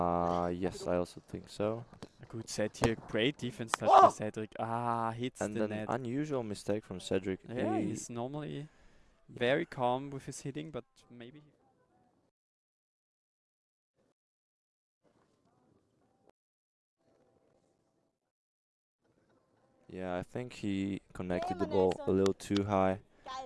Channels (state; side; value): identical; both; correlation 1.00